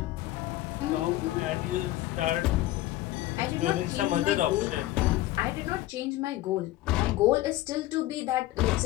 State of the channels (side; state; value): right; quieter; 16.1 dB